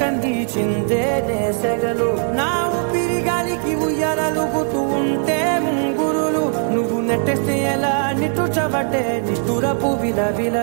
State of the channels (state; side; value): silent; left; 59 dB below the other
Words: కందిచిందే నేసెగలు నా ఊపిరి గాలికి ఉయ్యాలలుగుతూ ఉంటే ముంగురులు నువ్వు నెట్టేస్తే ఎలా నిట్టుచబట్టే నిష్ఠురపు